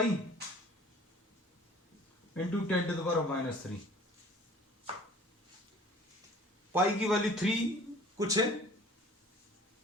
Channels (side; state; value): both; normal; correlation 0.49